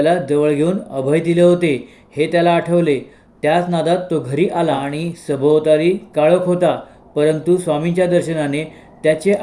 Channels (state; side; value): identical; both; correlation 1.00